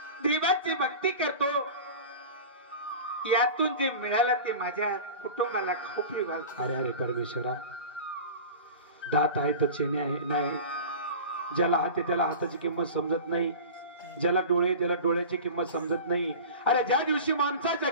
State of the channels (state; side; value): inverted; both; correlation -0.34